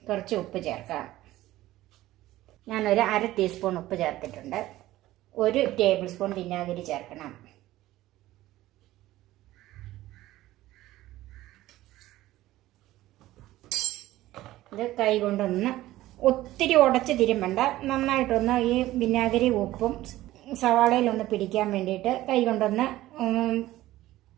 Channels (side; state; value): left; quieter; 15.9 dB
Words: കുറച്ച് ഉപ്പ് ചേർക്കാം. ഞാനൊരു 1/2 ടീസ്പൂൺ ഉപ്പ് ചേർത്തിട്ടുണ്ട്. 1 ടേബിൾ സ്പൂൺ വിനാഗിരി ചേർക്കണം. ഇത് കൈ കൊണ്ടൊന്ന് ഒത്തിരി ഉടച്ച് തിരുമ്പണ്ട, നന്നായിട്ടൊന്ന് ഈ വിനാഗിരി ഉപ്പും സവാളയിലൊന്ന് പിടിക്കാൻ വേണ്ടിയിട്ട് കൈ കൊണ്ടൊന്ന്